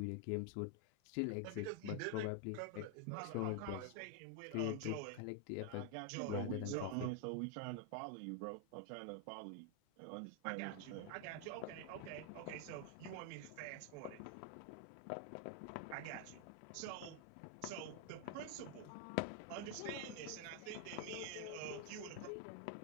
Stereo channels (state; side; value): different; both; correlation 0.00